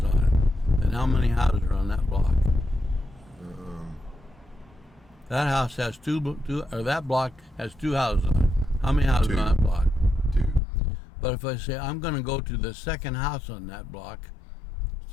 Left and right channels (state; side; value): drops out; right; at 10.6 s